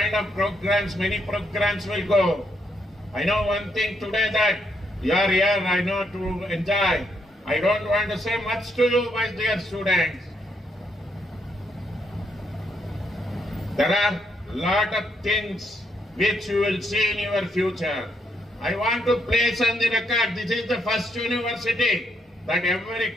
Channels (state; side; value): normal; both; correlation 0.76